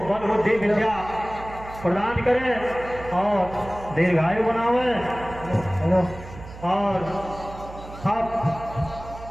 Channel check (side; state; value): right; noise; hum, 15 dB below the sound